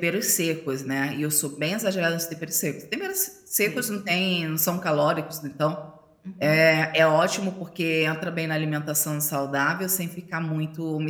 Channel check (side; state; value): both; identical; correlation 1.00